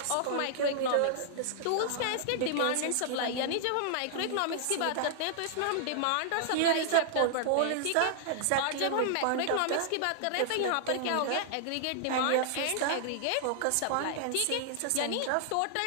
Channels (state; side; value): different; both; correlation -0.01